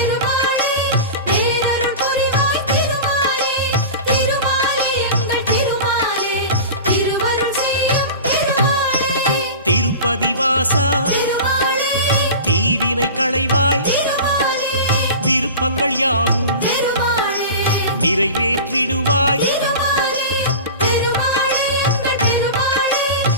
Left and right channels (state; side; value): inverted; both; correlation -0.32